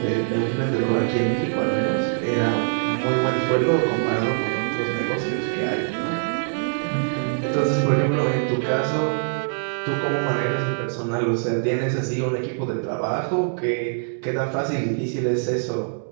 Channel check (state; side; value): silent; left; digital silence